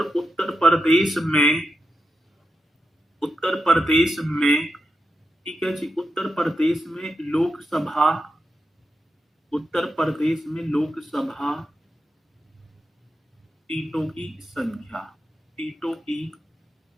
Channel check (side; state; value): both; normal; correlation 0.88